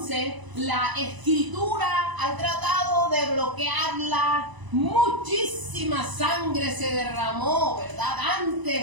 la escritura ha tratado de bloquearla, muchísima sangre se derramó, ¿verdad?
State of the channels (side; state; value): left; late; 1.0 ms